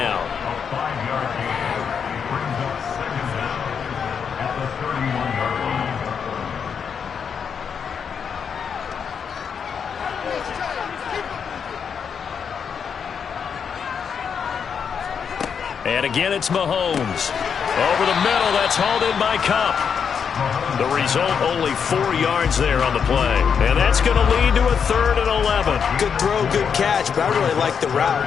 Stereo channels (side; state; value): right; quieter; 6.9 dB